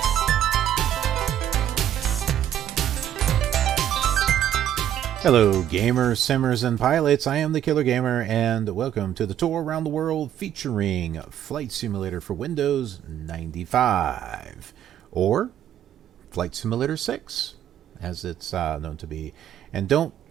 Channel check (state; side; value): quieter; left; 10.8 dB